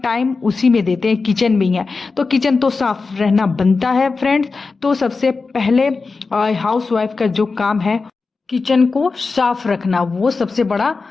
उसी में देते हैं, किचन में ही है। तो किचन तो साफ रहना बनता है फ्रेंड्स। तो सबसे पहले हाउस वाइफ का जो काम है किचन को साफ रखना, वो सबसे बड़ा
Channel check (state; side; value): quieter; right; 4.2 dB